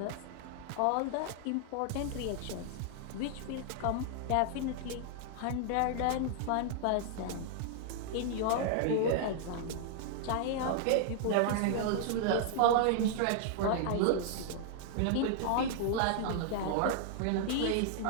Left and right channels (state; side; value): different; both; correlation -0.01